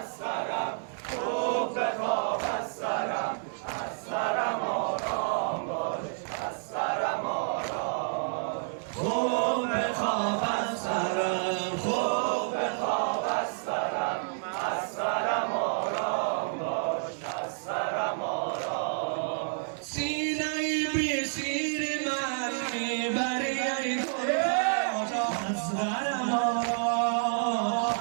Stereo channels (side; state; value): left; silent; 58 dB below the other